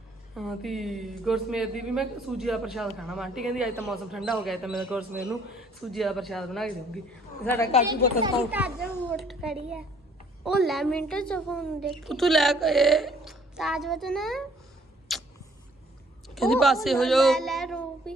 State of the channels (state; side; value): normal; both; correlation 0.61